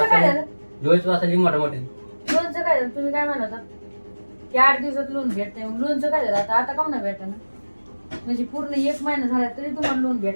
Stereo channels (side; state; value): both; inverted; correlation -1.00